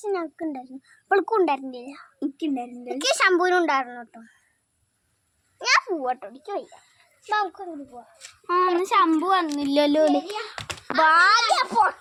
ഞങ്ങൾക്ക് ഉണ്ടായിരുന്നു, അവൾക്കും ഉണ്ടായിരുന്നില്ല. എനിക്കുണ്ടായിരുന്നില്ല. എനിക്ക് ശമ്പൂനും ഉണ്ടായിരുന്നു കേട്ടോ. ഞാൻ പോവാട്ടോ, എനിക്ക് വയ്യ. നമുക്കൊന്നും പോവാം. ശമ്പു വന്നില്ലല്ലോ. ഭാഗ്യ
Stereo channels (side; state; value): both; identical; correlation 1.00